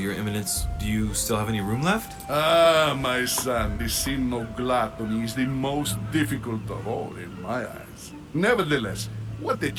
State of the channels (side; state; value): both; identical; correlation 1.00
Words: Your Eminence, do you still have any room left? Ah, my son, the sin of gluttony is the most difficult of all in my eyes. Nevertheless, what a